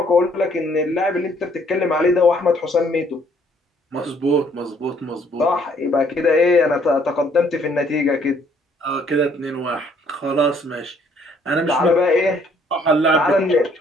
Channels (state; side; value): normal; both; correlation 0.63